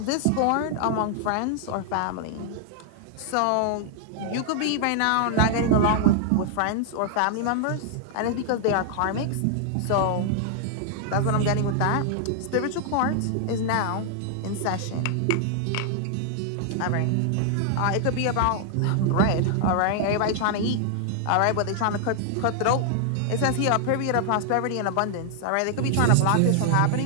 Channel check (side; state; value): both; different; correlation 0.00